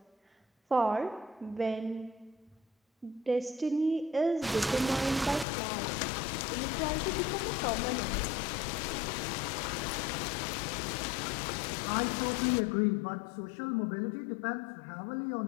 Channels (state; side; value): drops out; right; at 5.5 s